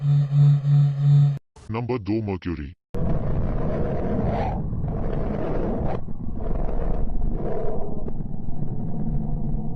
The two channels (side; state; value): both; identical; correlation 1.00